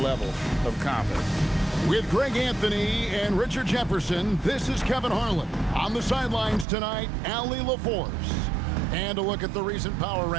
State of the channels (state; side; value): drops out; left; at 6.7 s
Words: of confidence. With Greg Anthony and Richard Jefferson, this is Kevin Harlan. On the sidelines tonight, Allie LaForce. And a look at the recent power